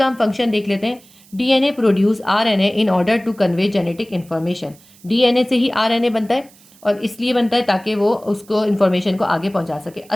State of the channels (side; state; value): right; noise; hiss, 27 dB below the sound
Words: हम फंक्शन देख लेते हैं। DNA produce RNA in order to convey genetic information. DNA से ही RNA बनता है और इसलिए बनता है ताकि वो उसको इन्फॉर्मेशन को आगे पहुंचा सके।